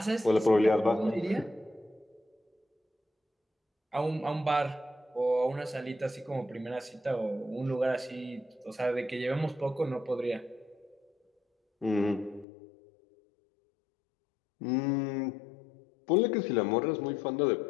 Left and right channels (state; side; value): drops out; right; at 12.5 s